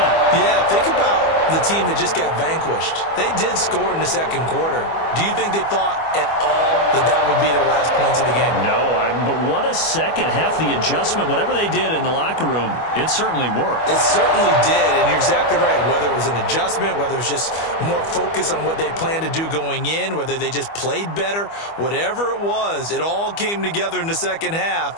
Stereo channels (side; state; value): right; late; 25 ms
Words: Yeah, think about the team that just got vanquished. They did score in the second quarter. Do you think they thought at all that would be their last points of the game? No, but what a second half. The adjustment, whatever they did in the locker room, it certainly worked. It certainly did, and you're exactly right. Whether it was an adjustment, whether it was just more focus on what they planned to do going in, whether they just played better, whatever it was, it all came together in the second